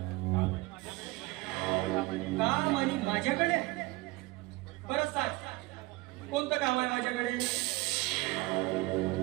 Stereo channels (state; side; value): quieter; left; 21.3 dB